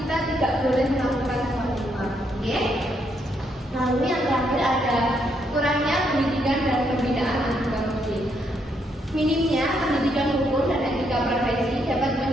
tidak boleh melakukan suap menyuap. Oke? Lalu yang terakhir ada kurangnya pendidikan dan pembinaan anti korupsi. Minimnya pendidikan hukum dan etika profesi dapat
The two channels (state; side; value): normal; both; correlation 0.75